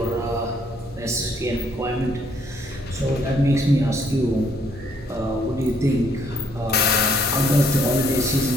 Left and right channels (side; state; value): both; normal; correlation 0.67